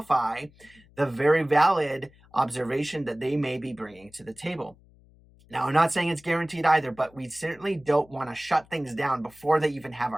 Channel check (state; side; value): noise; left; hum, 28 dB below the sound